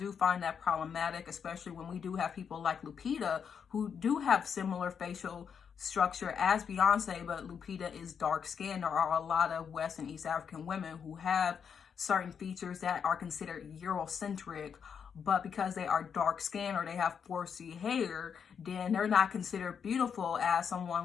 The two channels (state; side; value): quieter; right; 7.1 dB